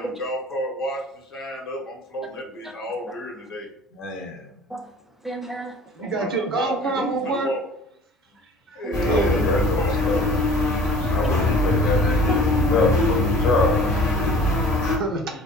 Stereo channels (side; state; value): both; normal; correlation 0.46